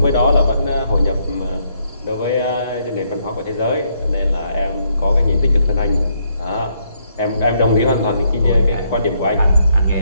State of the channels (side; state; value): both; inverted; correlation -0.73